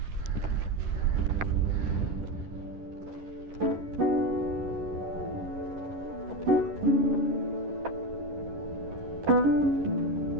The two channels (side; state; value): left; late; 11 ms